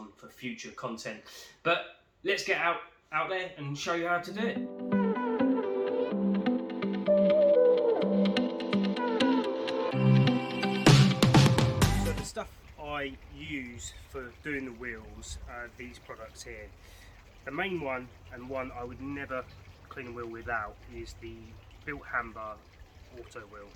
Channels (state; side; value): identical; both; correlation 1.00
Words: for future content. But let's get out there and show you how to do it. So the stuff I use for doing the wheels are these products here. The main one, and one I would never clean a wheel without, is the BILT HAMBER auto wheel.